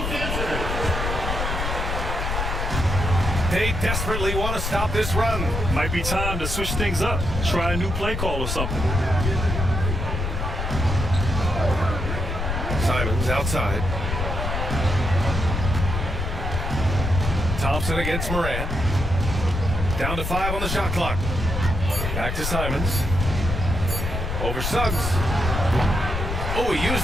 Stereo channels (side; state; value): left; noise; rumble, 2 dB below the sound